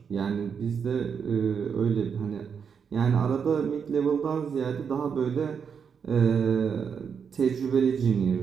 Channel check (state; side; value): quieter; left; 6.7 dB